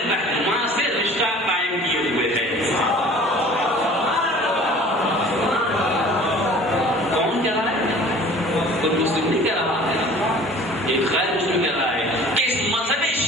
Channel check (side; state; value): both; normal; correlation 0.47